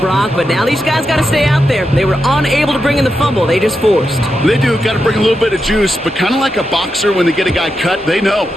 But now these guys got to stay out there. They were unable to bring in the fumble. They just forced. They do. Got to bring a little bit of juice. But kind of like a boxer when they get a guy cut, they know.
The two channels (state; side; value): normal; both; correlation 0.87